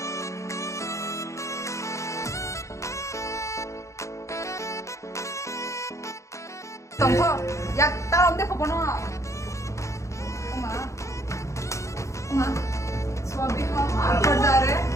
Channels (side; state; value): right; late; 0.15 ms